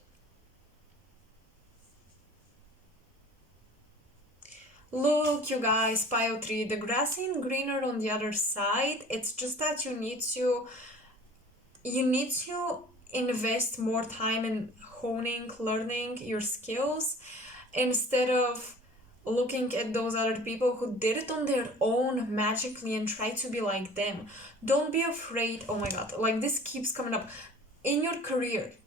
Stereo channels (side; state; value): both; normal; correlation 0.45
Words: Look, you guys, pile 3, the grass ain't greener on the other side. It's just that you need to invest more time in honing, learning your skills, instead of looking at those other people who did it on their own magically and try to be like them. Don't be afraid. Oh my god, like, this keeps coming up. In your career,